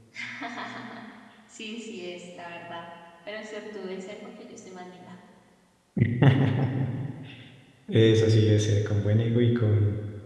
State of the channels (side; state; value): both; identical; correlation 1.00